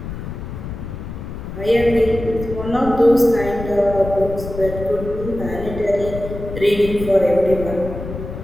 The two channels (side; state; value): left; noise; rumble, 9 dB below the sound